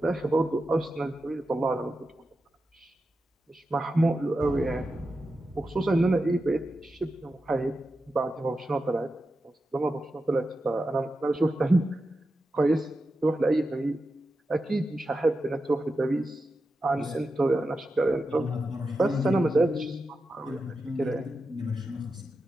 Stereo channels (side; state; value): both; normal; correlation 0.90